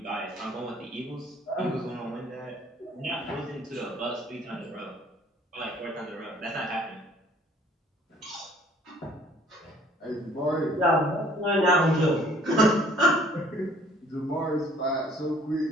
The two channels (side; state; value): both; normal; correlation 0.57